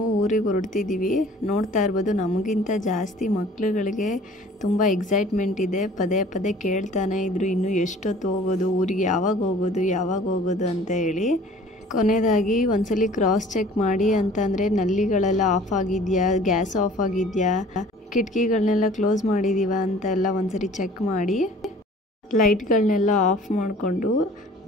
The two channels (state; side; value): normal; both; correlation 0.50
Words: ಊರಿಗೆ ಹೊರಡ್ತಿದ್ದೀವಿ. ನೋಡ್ತಾ ಇರ್ಬೋದು ನಮಗಿಂತ ಜಾಸ್ತಿ ಮಕ್ಳುಗಳಿಗೆ ತುಂಬ ಎಕ್ಸೈಟ್ಮೆಂಟ್ ಇದೆ. ಪದೇ ಕೇಳ್ತಾನೆ ಇದ್ರು ಇನ್ನೂ ಎಷ್ಟೊತ್ತು ಹೋಗೋದು, ಊರಿಗೆ ಯಾವಾಗ ಹೋಗೋದು ಅಂತ ಹೇಳಿ. ಕೊನೆಯದಾಗಿ ಒಂದ್ಸಲಿ ಕ್ರಾಸ್ ಚೆಕ್ ಮಾಡಿ ಅಂತಂದರೆ ನಲ್ಲಿಗಳೆಲ್ಲ ಆಫ್ ಆಗಿದೆಯಾ, ಗ್ಯಾಸ್ ಆಫ್ ಆಗಿದೆಯಾ, ಕಿಟಕಿಗಳನ್ನೆಲ್ಲ ಕ್ಲೋಸ್ ಮಾಡಿದ್ದೀವ ಅಂತ ಎಲ್ಲ ಒಂದ್ಸರಿ ಚೆಕ್ ಮಾಡಿ ಲೈಟ್ಗಳನ್ನೆಲ್ಲ ಆಫ್ ಮಾಡಿಕೊಂಡು